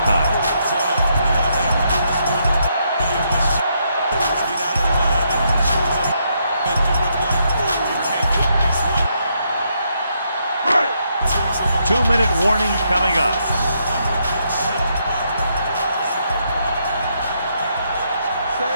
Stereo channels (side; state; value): both; inverted; correlation -0.77